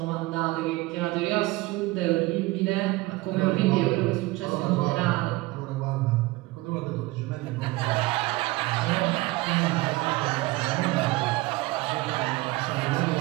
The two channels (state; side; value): quieter; left; 20.7 dB